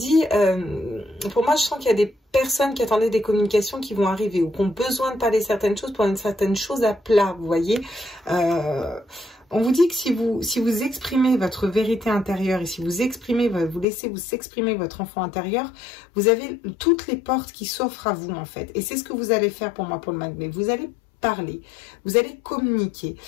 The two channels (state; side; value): drops out; right; at 13.9 s